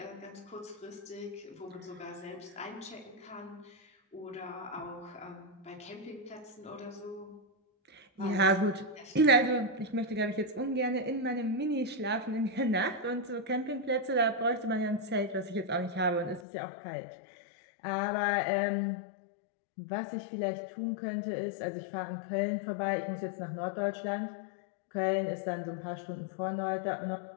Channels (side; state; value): right; drops out; at 16.4 s